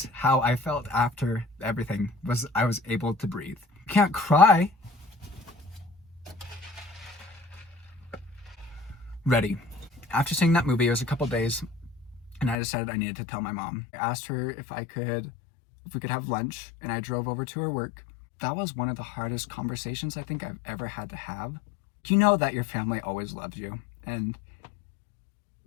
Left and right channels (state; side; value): drops out; right; at 12.6 s